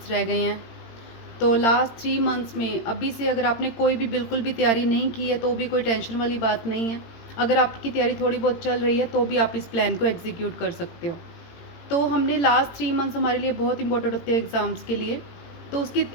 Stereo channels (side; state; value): right; late; 18 ms